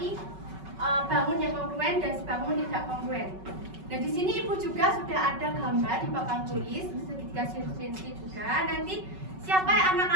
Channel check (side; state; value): left; late; 5.3 ms